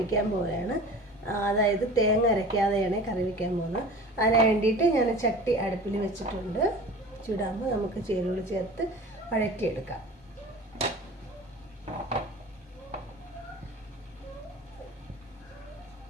പോവുകയാണ്. അതായത് തേങ്ങ അരയ്ക്കാതെയാണ് കറി വയ്ക്കാൻ പോകുന്നത്. അതിന് വേണ്ടിയിട്ട് ഞാൻ ചട്ടി അടുപ്പിൽ വെച്ചിട്ടുണ്ട്. ചൂടാകുമ്പോൾ നമുക്ക് ചേരുവകൾ ചേർത്ത് വഴറ്റിയെടുക്കാം.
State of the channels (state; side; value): normal; both; correlation 0.39